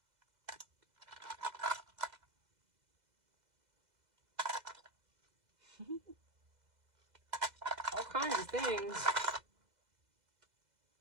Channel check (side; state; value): left; late; 2.0 ms